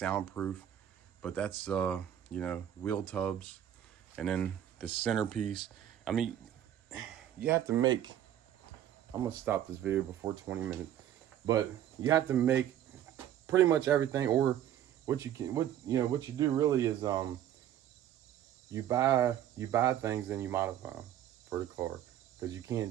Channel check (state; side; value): quieter; left; 11.0 dB